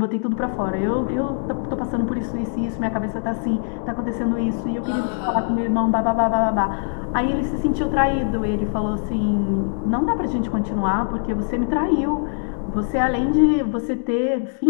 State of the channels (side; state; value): right; silent; 63 dB below the other